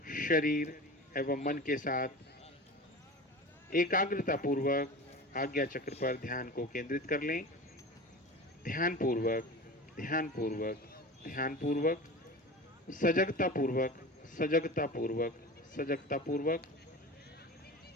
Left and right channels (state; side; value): normal; both; correlation 0.33